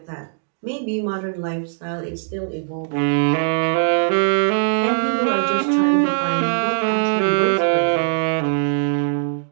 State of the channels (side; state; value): left; silent; digital silence